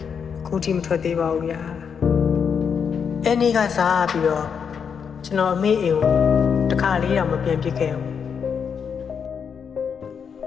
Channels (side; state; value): right; quieter; 6.8 dB